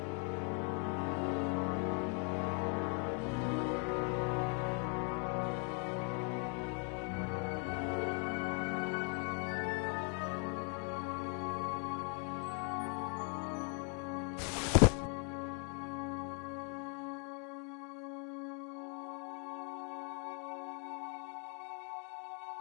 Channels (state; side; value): quieter; right; 39.9 dB